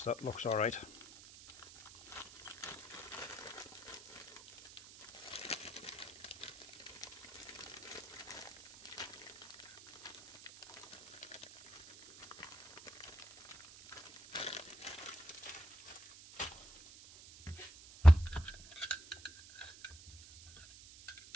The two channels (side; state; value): right; noise; hiss, 18 dB below the sound